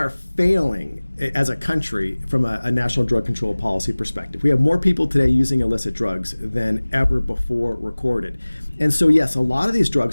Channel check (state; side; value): inverted; both; correlation -1.00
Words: failing as a country from a national drug control policy perspective. We have more people today using illicit drugs than ever before recorded. And so, yes, a lot of these